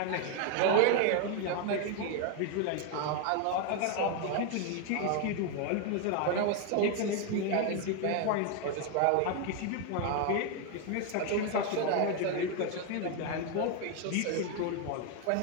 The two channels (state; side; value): different; both; correlation 0.01